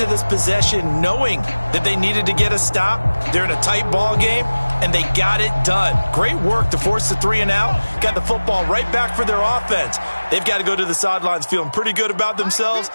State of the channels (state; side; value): inverted; both; correlation -1.00